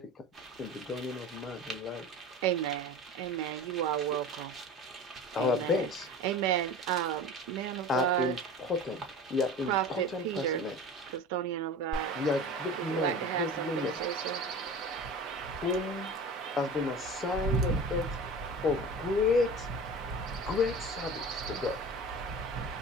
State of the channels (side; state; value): both; normal; correlation 0.35